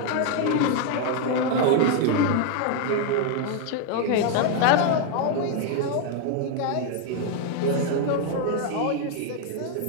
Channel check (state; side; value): different; both; correlation 0.01